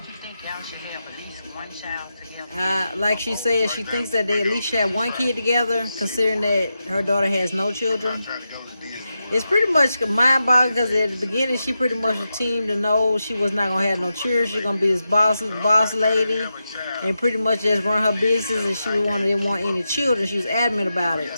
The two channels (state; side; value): inverted; both; correlation -0.89